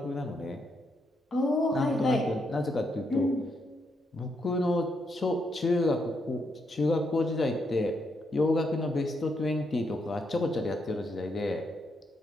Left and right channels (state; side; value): normal; both; correlation 0.79